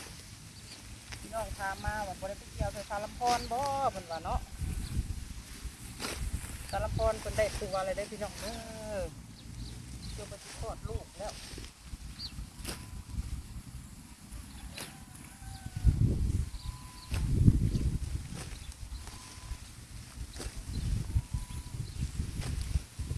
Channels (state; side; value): identical; both; correlation 1.00